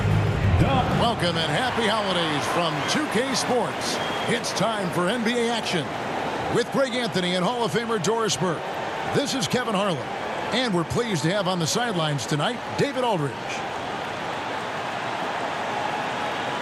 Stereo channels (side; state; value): both; identical; correlation 1.00